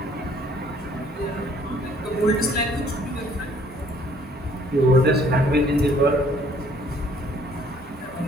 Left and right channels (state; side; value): normal; both; correlation 0.60